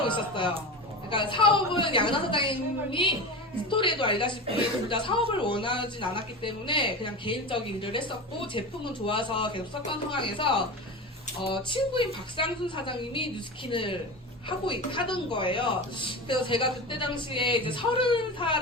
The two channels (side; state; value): both; normal; correlation 0.26